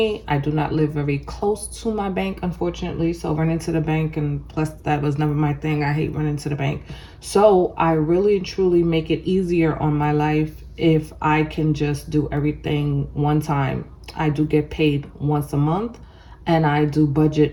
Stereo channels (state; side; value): identical; both; correlation 1.00